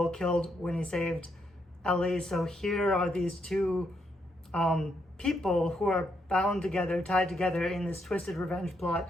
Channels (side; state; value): both; normal; correlation 0.78